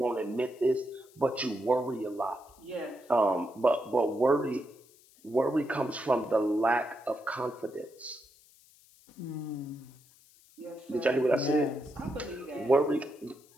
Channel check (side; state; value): left; noise; hiss, 27 dB below the sound